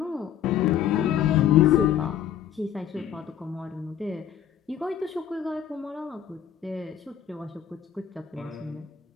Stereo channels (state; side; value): quieter; right; 9.5 dB